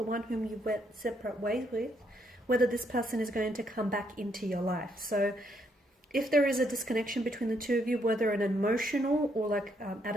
one whom you went separate ways with, whether this person is going to come back into your life. So if there is a disconnection between the two of you, whether an emotional or at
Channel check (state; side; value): normal; both; correlation 0.73